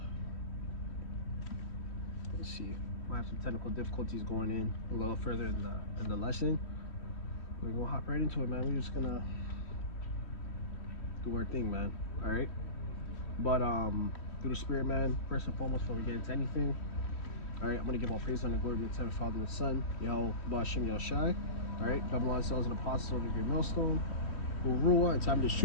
I have some technical difficulties going in a little further in the lesson. We're gonna hop right into it, man. We're just gonna do our thing, man. Alright, but through the Spirit, man, first and foremost, before we get into anything, alright, I'm gonna give all praise and glory to the Father and the Son, Yahawashi. Alright, Babylon cells and apostles of the great millstone, who rule and time this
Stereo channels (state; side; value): late; right; 3.1 ms